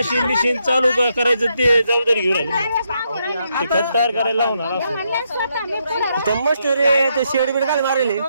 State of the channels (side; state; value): both; inverted; correlation -0.78